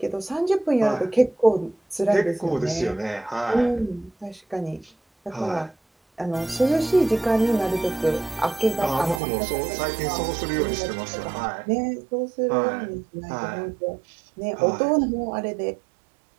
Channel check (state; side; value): drops out; left; at 9.2 s